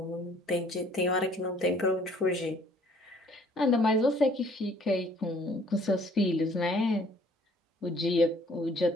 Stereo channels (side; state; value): both; normal; correlation 0.58